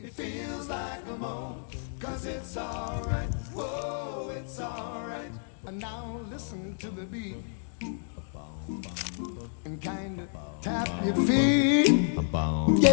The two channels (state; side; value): silent; right; digital silence